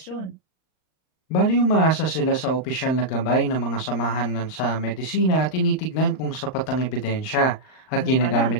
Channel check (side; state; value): right; late; 38 ms